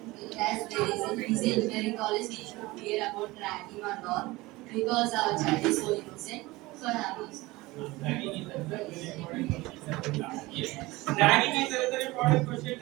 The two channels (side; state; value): left; quieter; 20.7 dB